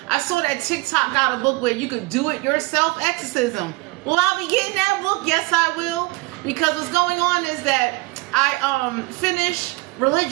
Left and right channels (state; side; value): quieter; left; 23.4 dB